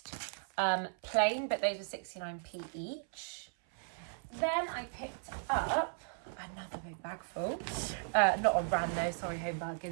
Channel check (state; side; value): silent; left; 54 dB below the other